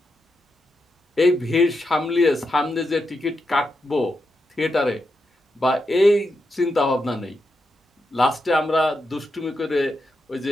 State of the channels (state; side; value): normal; both; correlation 0.86